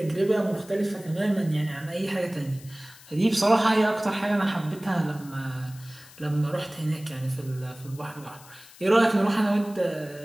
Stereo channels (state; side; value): noise; left; hiss, 21 dB below the sound